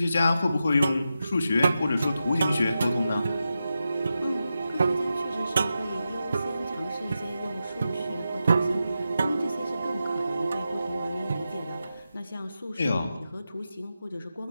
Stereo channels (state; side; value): inverted; both; correlation -0.90